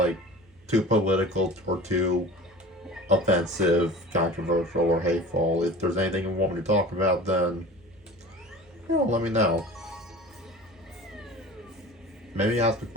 too political or too offensive, controversial, or hateful, if there's anything you want me to talk about, then let me know. Maybe ask a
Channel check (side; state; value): right; noise; hum, 30 dB below the sound